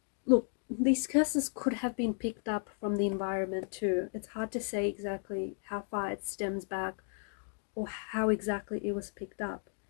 Look, these curses could have been picked up from the environment too. It's hard to say exactly how far it stems back or how exactly it was picked up.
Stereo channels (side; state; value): right; silent; 55 dB below the other